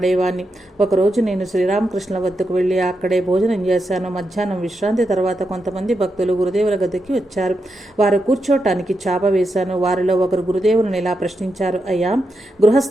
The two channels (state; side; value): normal; both; correlation 0.85